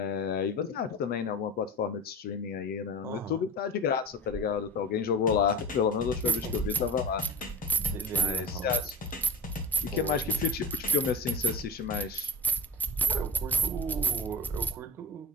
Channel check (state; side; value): normal; both; correlation 0.34